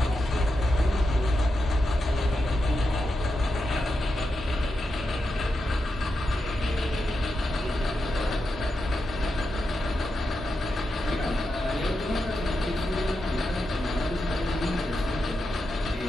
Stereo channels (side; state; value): both; normal; correlation 0.88